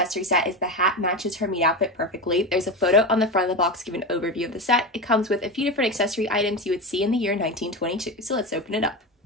set is the hat matches her meat outfit perfectly. There's a photo on the front of the box giving an overview of the set. It comes with a few different accessory items you would see in the year 1922. So let's open it up.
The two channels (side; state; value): both; normal; correlation 0.20